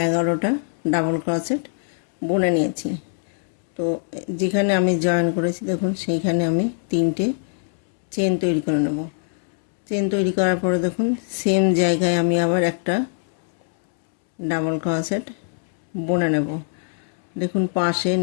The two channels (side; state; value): right; silent; 64 dB below the other